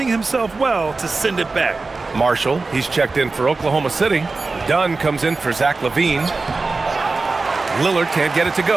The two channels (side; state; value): left; quieter; 3.8 dB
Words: himself well to send it back. Marshall, he's checked in for Oklahoma City. Dunn comes in for Zach LaVine. Lillard can't get it to